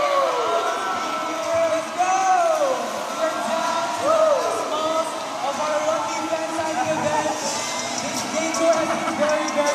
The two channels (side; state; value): both; identical; correlation 1.00